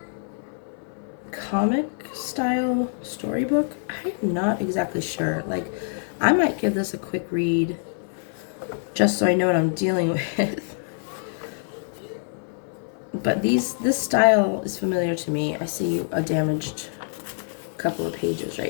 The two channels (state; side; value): silent; right; 61 dB below the other